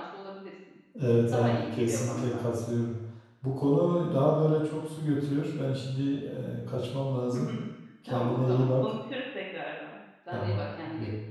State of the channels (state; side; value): identical; both; correlation 1.00